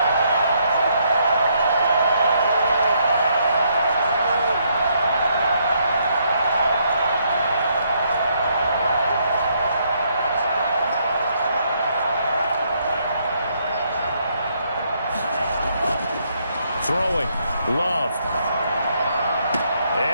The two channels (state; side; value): inverted; both; correlation -0.73